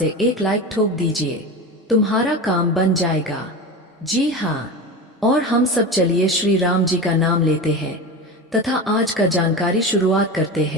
एक लाइक ठोक दीजिए। तुम्हारा काम बन जाएगा। जी हाँ, और हम सब चलिए श्री राम जी का नाम लेते हैं तथा आज का जानकारी शुरुआत करते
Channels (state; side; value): normal; both; correlation 0.26